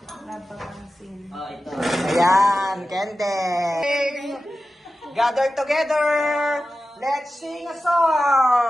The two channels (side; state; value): both; normal; correlation 0.94